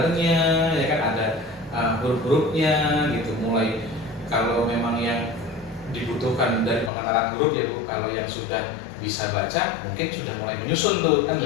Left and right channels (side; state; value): right; drops out; at 6.9 s